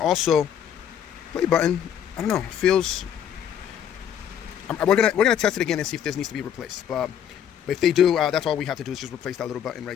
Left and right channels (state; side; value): quieter; right; 9.2 dB